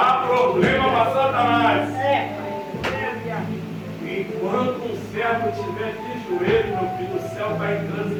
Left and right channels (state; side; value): identical; both; correlation 1.00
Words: problema para Satanás. Enquanto um servo estiver de joelho, meu filho, o céu está em